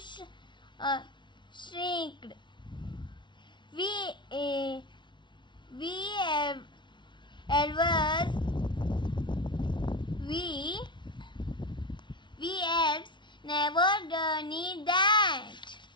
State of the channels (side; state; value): right; late; 0.23 ms